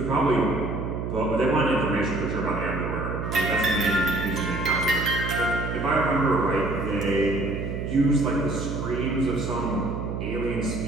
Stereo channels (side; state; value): right; noise; hum, 4 dB below the sound